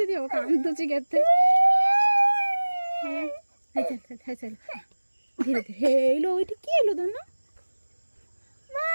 দিও কান্দুছি কেতে হ্যাঁ চল ধীরে ধীরে এলো ওইটা কি এলো ধন্য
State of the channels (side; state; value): both; inverted; correlation -1.00